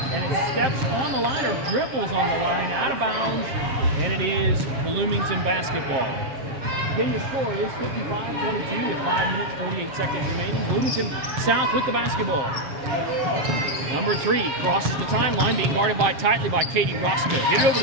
and it steps on the line or dribbles on the line out of bounds, and it is Bloomington basketball. Again, the score is 55-22 with 5 minutes, 48 seconds remaining. Bloomington South with the basketball. Number 3 crosses the timeline, being guarded tightly by Katie Roscoe. Get it over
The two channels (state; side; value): late; left; 7.6 ms